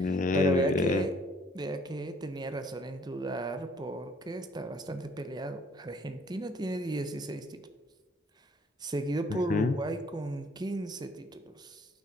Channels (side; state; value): both; normal; correlation 0.60